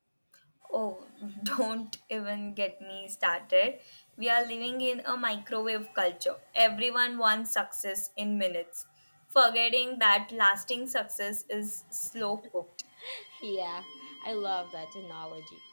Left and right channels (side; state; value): both; inverted; correlation -1.00